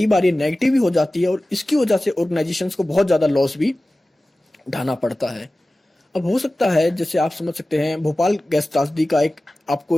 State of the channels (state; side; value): normal; both; correlation 0.96